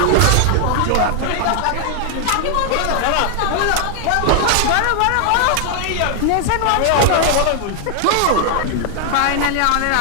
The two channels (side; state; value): both; different; correlation 0.00